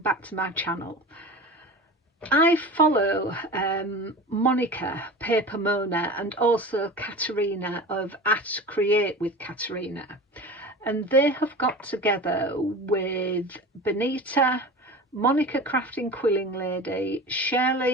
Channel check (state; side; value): normal; both; correlation 0.33